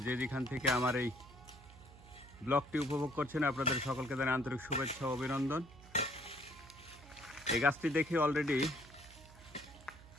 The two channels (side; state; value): right; noise; hum, 20 dB below the sound